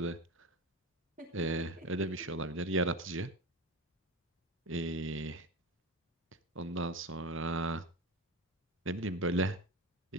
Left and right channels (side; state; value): both; normal; correlation 0.23